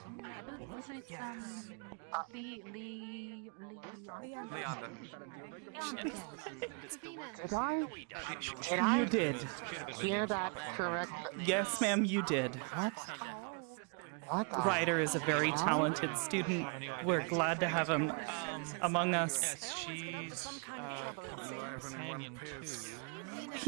Did I You did. hear that correct? Yes, ma'am, you did. What? What? Ryder is a very talented student. We're glad to have him among us. She's companion too.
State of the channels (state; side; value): quieter; left; 37.4 dB